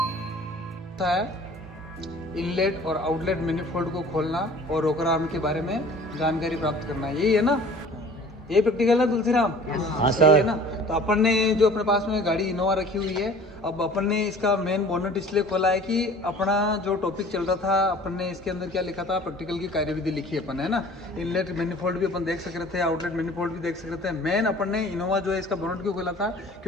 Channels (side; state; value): both; normal; correlation 0.47